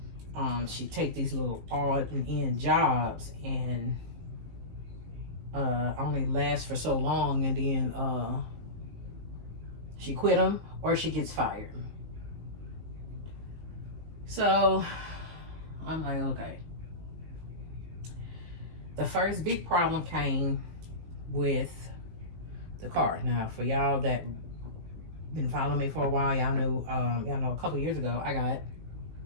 She take these little odd and end jobs and only last for so long, and then she quit them or she gets fired. So I'm like, okay. The first big problem came with the car. Now, for y'all that been following me for a while, y'all know a couple years ago I got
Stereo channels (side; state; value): left; late; 19 ms